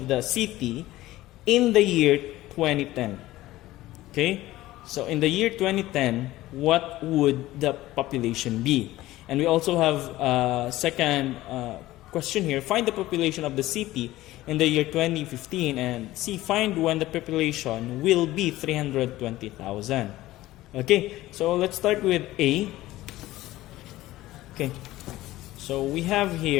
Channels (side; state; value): right; quieter; 16.5 dB